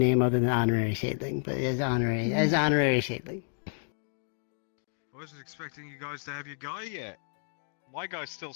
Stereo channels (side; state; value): right; silent; digital silence